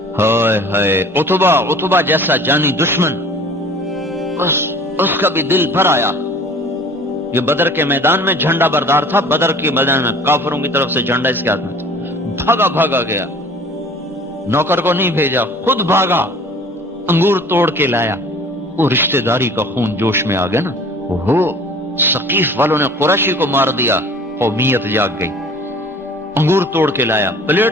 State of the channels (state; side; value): normal; both; correlation 0.47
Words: ہائے ہائے، عتبہ جیسا جانی دشمن، اس کا بھی دل بھر آیا۔ یہ بدر کے میدان میں جھنڈا بردار تھا، بدر کے میدان میں کافروں کی طرف سے جھنڈا اس کے ہاتھ میں تھا، بھاگا گیا، نوکر کو نہیں بھیجا، خود بھاگا، انگور توڑ کے لایا۔ وہ رشتہ داری کا خون جوش میں آ گیا نا، ثقیف والوں نے قریشی کو مار دیا، قومیت جاگ گئی، انگور توڑ کے لایا،